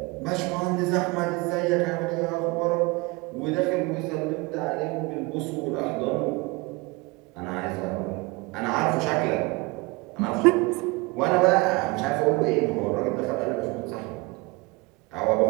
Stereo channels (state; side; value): quieter; left; 25.0 dB